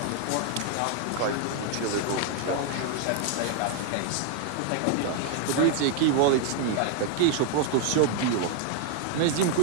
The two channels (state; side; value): different; both; correlation 0.00